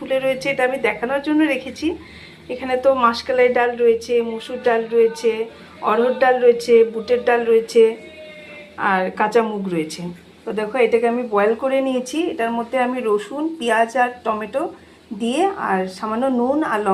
রয়েছে, এটা আমি দেখানোর জন্য রেখেছি। এখানে তো মাসকলাই ডাল রয়েছে, মসুর ডাল রয়েছে, অড়হর ডাল রয়েছে, বুটের ডাল রয়েছে, আর কাঁচা মুগ রয়েছে। তো দেখো এটাকে আমি বয়েল করে নিয়েছি। এটার মধ্যে আমি রসুন, পেঁয়াজ আর টমেটো দিয়ে আর সামান্য নুন আর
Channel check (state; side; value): identical; both; correlation 1.00